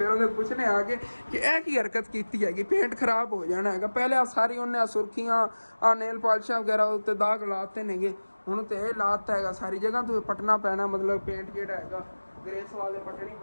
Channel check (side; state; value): both; inverted; correlation -1.00